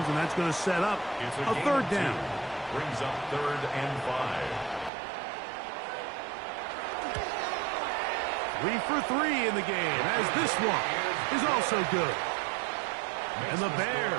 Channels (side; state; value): left; drops out; at 4.9 s